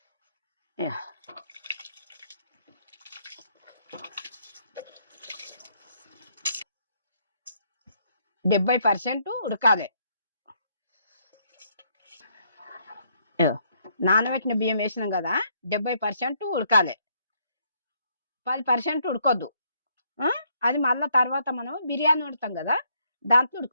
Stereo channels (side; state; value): both; inverted; correlation -0.71